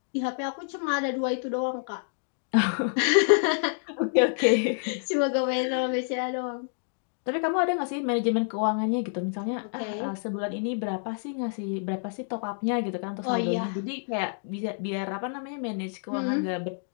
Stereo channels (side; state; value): right; silent; digital silence